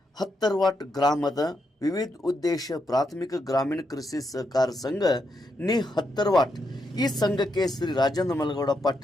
ಹತ್ತರ್ವಾಟ್ ಗ್ರಾಮದ ವಿವಿಧ ಉದ್ದೇಶ ಪ್ರಾಥಮಿಕ ಗ್ರಾಮೀಣ ಕೃಷಿ ಸಹಕಾರ ಸಂಘ ನಿ ಹತ್ತರ್ವಾಟ್ ಈ ಸಂಘಕ್ಕೆ ಶ್ರೀ ರಾಜೇಂದ್ರ ಮಲಗೌಡ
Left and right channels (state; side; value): normal; both; correlation 0.81